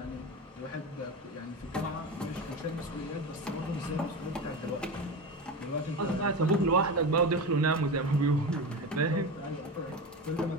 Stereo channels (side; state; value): both; normal; correlation 0.24